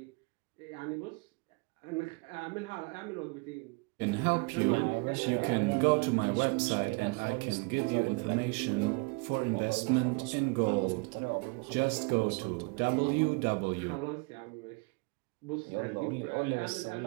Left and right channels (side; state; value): left; quieter; 30.1 dB